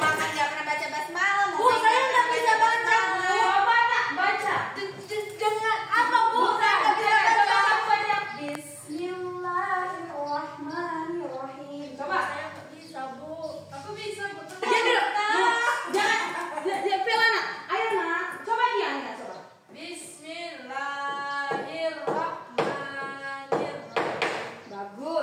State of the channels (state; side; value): identical; both; correlation 1.00